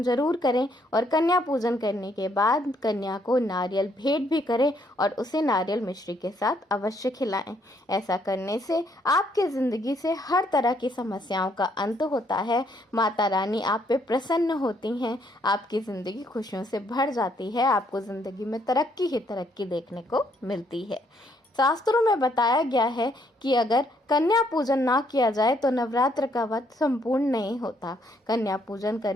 ज़रूर करें। और कन्या पूजन करने के बाद कन्या को नारियल भेंट भी करें और उसे नारियल मिश्री के साथ अवश्य खिलाएं। ऐसा करने से आपके ज़िंदगी से हर तरह की समस्याओं का अंत होता है। माता रानी आप पे प्रसन्न होती हैं, आपकी ज़िंदगी खुशियों से भर जाती है, आपको ज़िंदगी में तरक्की ही तरक्की देखने को मिलती है। शास्त्रों में बताया गया है कि अगर कन्या पूजन ना किया जाए तो नवरात्र का व्रत संपूर्ण नहीं होता। कन्या पूजन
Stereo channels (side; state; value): both; normal; correlation 0.70